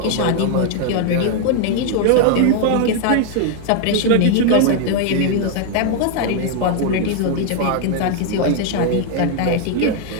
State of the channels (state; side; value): different; both; correlation 0.00